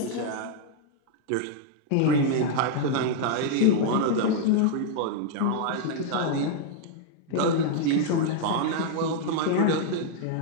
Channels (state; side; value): different; both; correlation -0.01